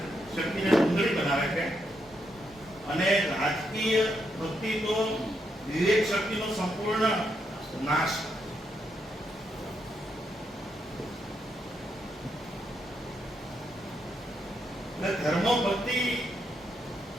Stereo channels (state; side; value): normal; both; correlation 0.80